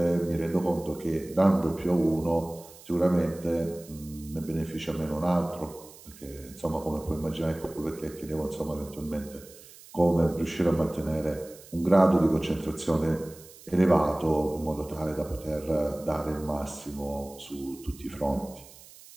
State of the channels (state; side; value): noise; right; hiss, 21 dB below the sound